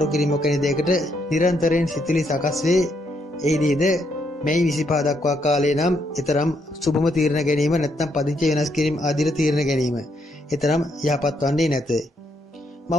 කිරීමක් වැනි දෙයකට නිරන්තරයෙන් සිතිලි සකස් වේ. එහිදීද මැයි 25 දක්වා කාලේ නම් ඊතරම් සුබම තීරණ ගැනීම නැත්නම් පදිංචි වෙනස් කිරීම ආදී තීරණ ගැනීම ඊතරම් යහපත් වන්නේ නැත.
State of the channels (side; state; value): both; normal; correlation 0.75